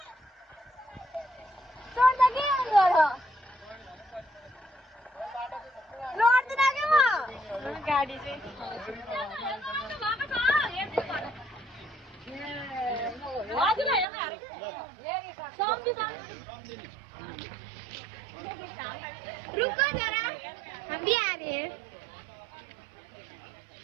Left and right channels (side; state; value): left; drops out; at 14.1 s